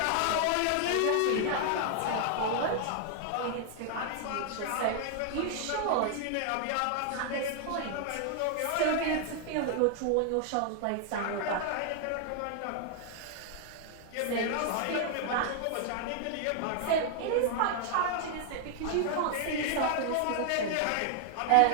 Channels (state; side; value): different; both; correlation 0.00